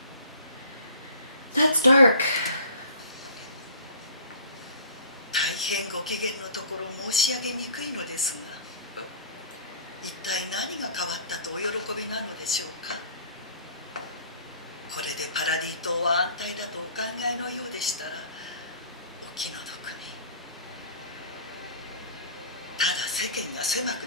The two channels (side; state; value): both; inverted; correlation -0.46